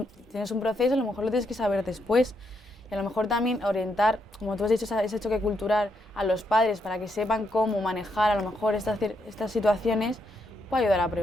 Tienes un proceso, a lo mejor lo tienes que saber después. Y a lo mejor también orientar, como tú has dicho, ese choque cultural a los padres para que sepan cómo manejar a lo mejor estas situaciones, puede ayudar a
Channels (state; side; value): normal; both; correlation 0.78